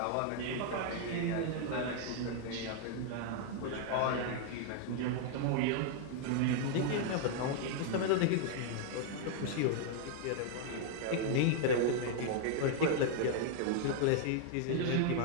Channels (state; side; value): different; both; correlation 0.00